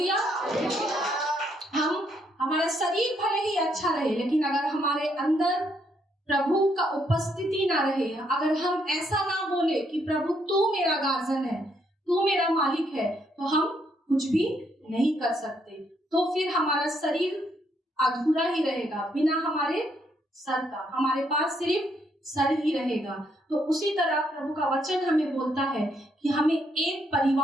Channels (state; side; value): normal; both; correlation 0.73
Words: हमारा शरीर भले ही अच्छा रहे, लेकिन अगर हमारे अंदर प्रभु का उपस्थिति ना रहे, अगर हम ऐसा ना बोले कि प्रभु तू मेरा गार्जियन है, तू मेरा मालिक है, तो हम कुछ भी नहीं कर सकते। तो फिर हमारा शरीर अधूरा ही रहेगा, बिना हमारे सर का। हमारे पास सिर्फ सर ही रहेगा। तो उसी तरह प्रभु का वचन हमें बोलता है कि हमें एक